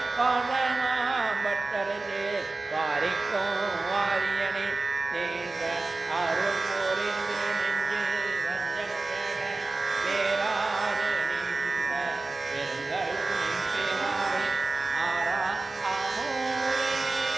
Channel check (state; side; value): quieter; left; 3.4 dB